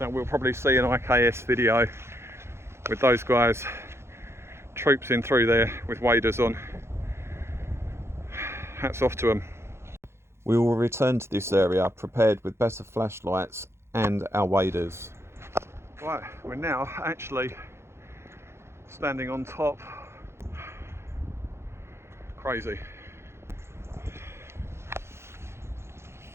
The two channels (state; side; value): late; left; 0.13 ms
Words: we'll probably see an IKS video with those guys troopsing through there with waders on. Hats off to them. We will return to this area prepared with better flashlights and our waders. Right, we're now actually standing on top. Crazy.